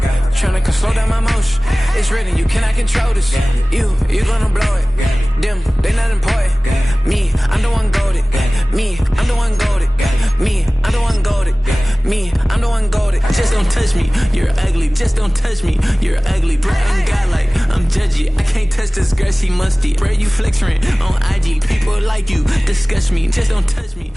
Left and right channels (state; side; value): normal; both; correlation 0.98